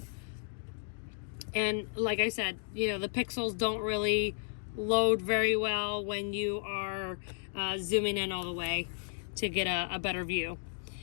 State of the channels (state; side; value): silent; right; digital silence